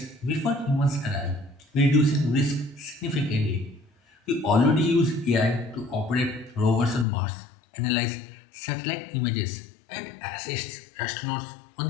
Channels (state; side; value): drops out; right; at 7.1 s